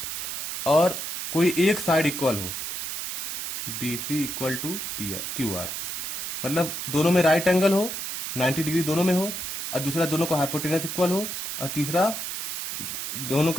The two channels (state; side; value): noise; right; hiss, 5 dB below the sound